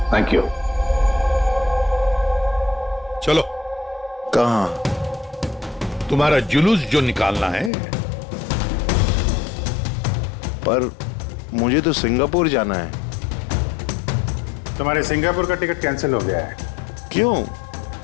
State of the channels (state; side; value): drops out; right; at 7.7 s